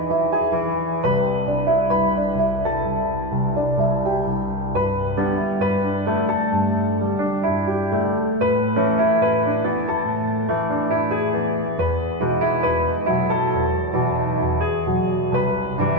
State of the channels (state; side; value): late; left; 10 ms